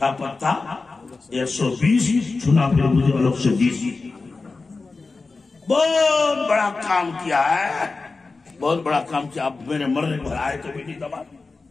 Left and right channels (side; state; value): right; quieter; 3.9 dB